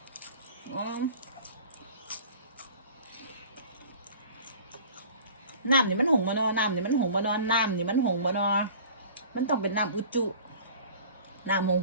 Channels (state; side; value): inverted; both; correlation -0.44